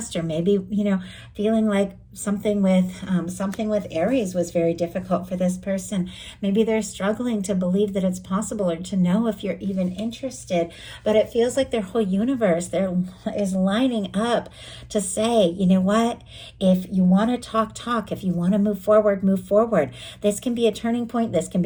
or maybe, you know, feeling like something with Aries was very difficult for this person. Maybe they're struggling to believe that it's possible or to know if you're even interested, but it feels like their whole universe there is lining up to say, you know what, if you want to talk, if you want to move forward, move forward. This can be a turning point. This can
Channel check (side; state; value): both; identical; correlation 1.00